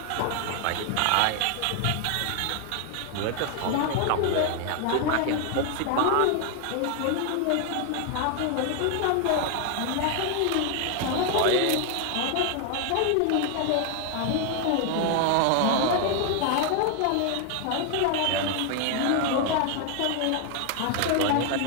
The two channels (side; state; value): both; different; correlation 0.00